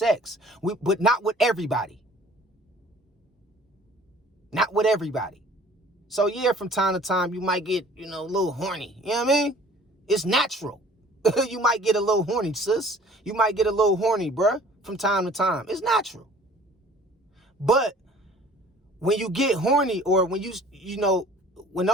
But not with everybody. Not with everybody. So yeah, from time to time, you might get, a little horny. You know what I mean? It's natural. You might get a little horny, sis. You might get a little horny, bruh, from time to time. It's natural. But when you get horny, or when when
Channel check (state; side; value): normal; both; correlation 0.51